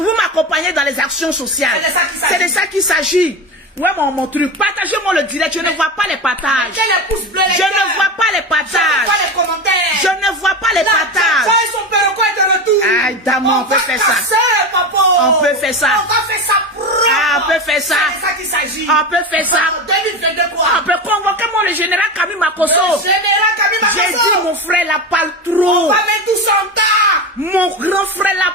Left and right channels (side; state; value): both; normal; correlation 0.22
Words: m'accompagnez dans les actions sociales. C'est de ça qu'il s'agit. Ouais, mon truc. Partagez-moi le direct. Je ne vois pas les partages. Je ne vois pas les partages. Je ne vois pas les partages. Aïe, dame, on peut faire ça. On peut faire ça. On peut faire ça. On peut faire ça. On peut convoquer moi le général Camille Makosso. J'ai dit mon frère la parle trop. Mon grand frère la